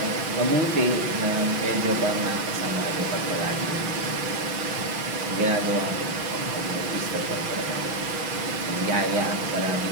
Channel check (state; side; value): late; left; 5.9 ms